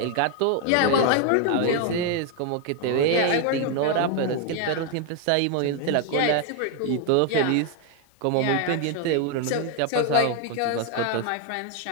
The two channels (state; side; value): different; both; correlation 0.01